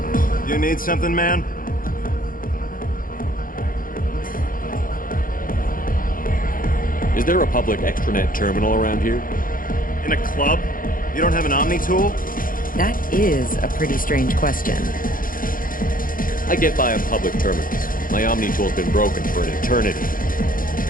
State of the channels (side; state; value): right; late; 0.40 ms